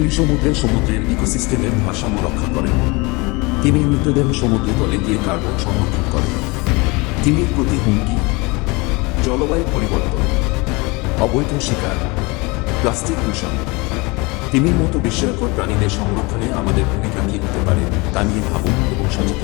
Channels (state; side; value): quieter; right; 26.0 dB